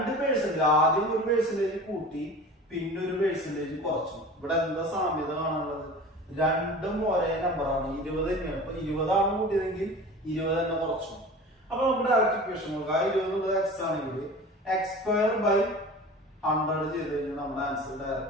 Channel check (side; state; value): both; normal; correlation 0.38